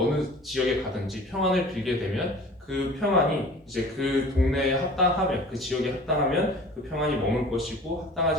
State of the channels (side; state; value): both; normal; correlation 0.44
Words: 지역에 가든지 평안을 빌게 되면 그 평안이 이제 그 동네에 합당하면 그 지역에 합당하면 그 평안이 머물 것이고